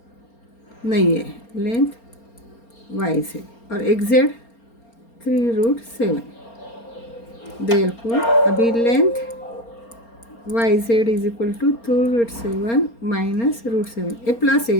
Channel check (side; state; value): right; late; 4.3 ms